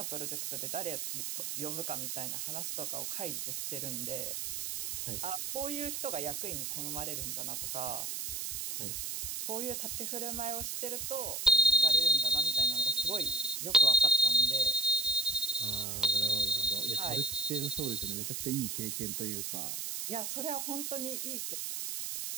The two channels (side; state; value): right; noise; hiss, 4 dB below the sound